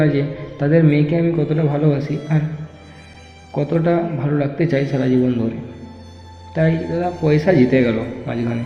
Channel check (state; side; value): identical; both; correlation 1.00